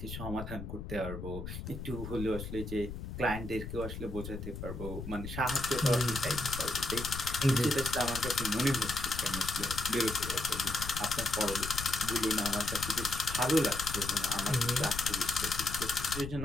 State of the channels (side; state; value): left; noise; rumble, 8 dB below the sound